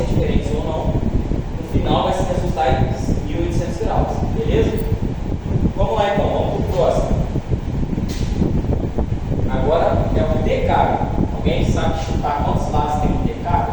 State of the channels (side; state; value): both; identical; correlation 1.00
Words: diferentes ou não. No final vai se resultar em 1800 graus, beleza? Vamos lá então, vamos para o próximo. Agora é o decágono. Alguém sabe chutar quantos lados tem um